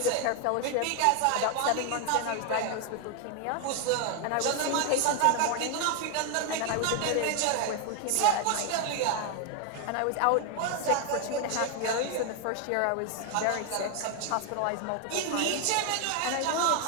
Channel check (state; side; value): different; both; correlation 0.01